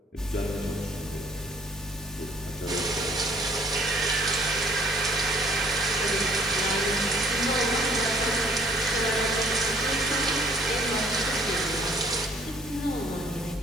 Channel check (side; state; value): both; normal; correlation 0.59